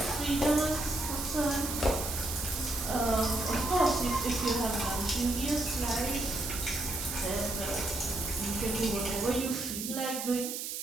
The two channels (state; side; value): noise; right; hiss, 5 dB below the sound